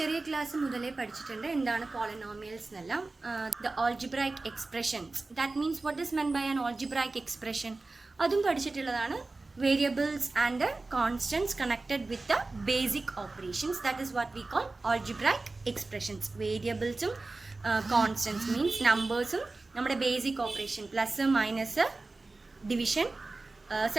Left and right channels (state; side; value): quieter; left; 3.4 dB